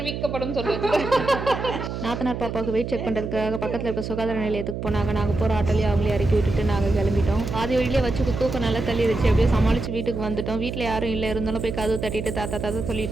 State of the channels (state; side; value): noise; right; hum, 5 dB below the sound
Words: சொல்லுவது. நாத்தனார் பாப்பாவுக்கு வெயிட் செக் பண்ணுறதுக்காக பக்கத்தில் இருக்க சுகாதார நிலையத்துக்கு போனாங்க. நாங்கள் போகிற ஆட்டோலேயே அவங்களே இறக்கி விட்டுட்டு நாங்கள் கிளம்பிட்டோம். பாதி வழியிலே வச்சு தூக்கம் நல்லா தள்ளிடுச்சு. எப்படியோ சமாளித்து வீட்டுக்கு வந்துட்டோம். வீட்டில் யாரும் இல்லை, இருந்தாலும் போய் கதவு தட்டிட்டு தாத்தா